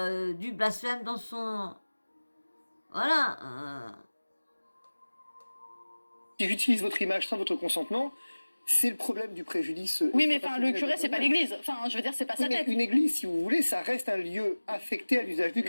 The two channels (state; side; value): inverted; both; correlation -1.00